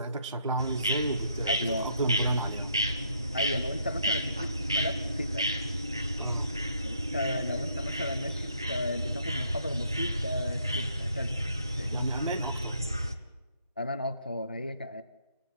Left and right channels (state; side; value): inverted; both; correlation -0.70